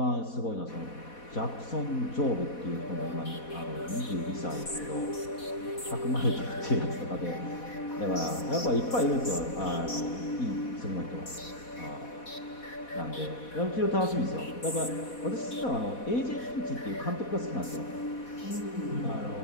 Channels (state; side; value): late; right; 4.1 ms